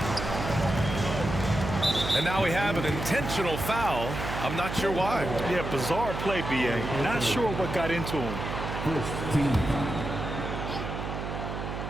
And now we have an intentional foul. I'm not sure why. Yeah, bizarre play, B.A. Not sure what got into him.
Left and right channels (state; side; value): noise; right; hum, 5 dB below the sound